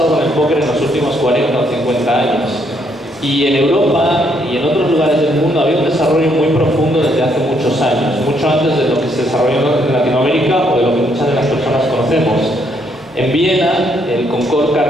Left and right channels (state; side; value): normal; both; correlation 0.72